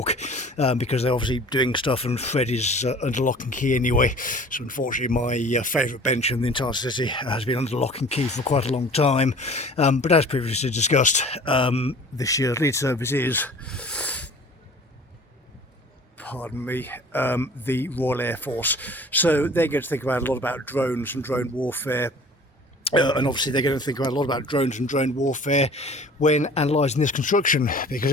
because they're obviously doing stuff, and Fred is under lock and key anyway. So unfortunately my favourite bench in the entire city has been under lock and key for quite a long time. But as previously discussed, this year's lead service is, pardon me, the Royal Air Force. So they're going to think about a lot about drones and drone warfare. And obviously they're going to think about a lot about drones and drone warfare when analysing this construction, because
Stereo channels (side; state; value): both; normal; correlation 0.46